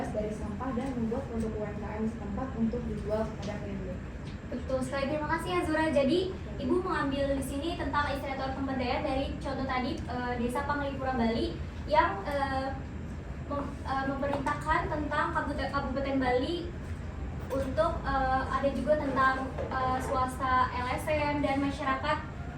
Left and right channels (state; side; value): identical; both; correlation 1.00